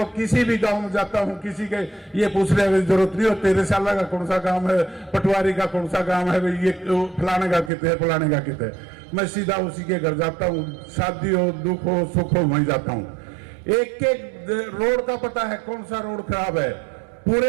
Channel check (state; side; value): drops out; left; at 7.7 s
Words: किसी भी गांव में जाता हूं, किसी के ये पूछने की जरूरत नहीं हो तेरे साला का कौन सा गांव है, पटवारी का कौन सा गांव है, ये फलाने का कितने है, फलाने का कितने है। मैं सीधा उसी के घर जाता हूं, शादी हो, दुख हो, सुख हो, वहीं जाता हूं। एक एक रोड का पता है कौन सा रोड खराब है,